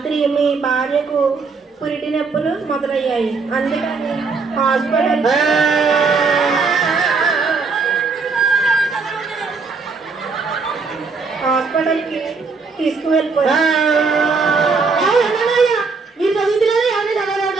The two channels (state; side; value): quieter; left; 4.6 dB